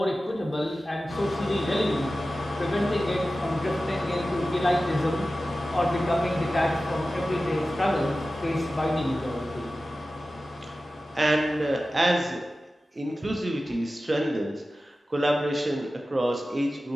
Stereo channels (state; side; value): normal; both; correlation 0.95